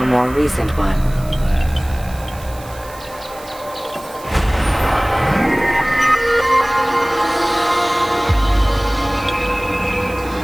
more recent one.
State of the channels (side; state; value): right; noise; hiss, 20 dB below the sound